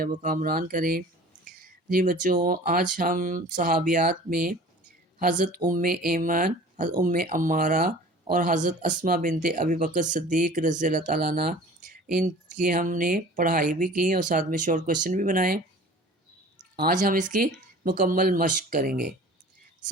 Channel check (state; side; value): normal; both; correlation 0.44